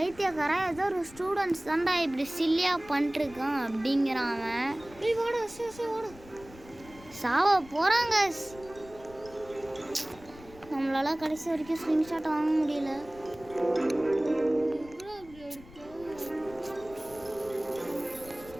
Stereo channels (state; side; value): noise; left; rumble, 21 dB below the sound